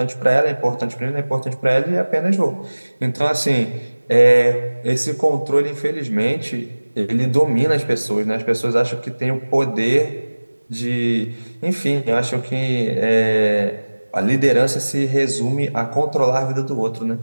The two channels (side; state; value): both; inverted; correlation -1.00